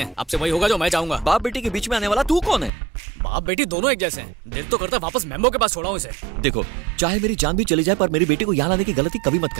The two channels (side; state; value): left; drops out; at 2.7 s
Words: अब से वही होगा जो मैं चाहूंगा। बाप बेटी के बीच में आने वाला तू कौन है? बाप बेटी दोनों एक जैसे हैं। दिल तो करता वापस मेम्बो के पास छोड़ा हूँ इसे। देखो, चाहे मेरी जान भी चली जाए पर मेरी बेटी को यहाँ लाने की गलती कभी मत